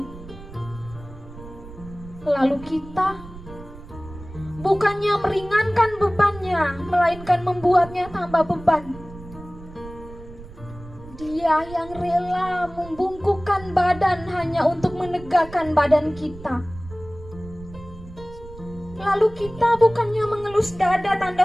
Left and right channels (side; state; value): right; noise; rumble, 16 dB below the sound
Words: Lalu kita bukannya meringankan bebannya, melainkan membuatnya tambah beban. Dia yang rela membungkukkan badan hanya untuk menegakkan badan kita. Lalu kita bukannya mengelus dada tanda